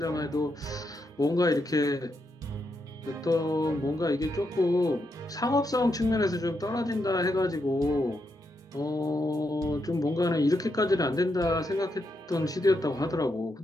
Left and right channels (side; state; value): both; normal; correlation 0.82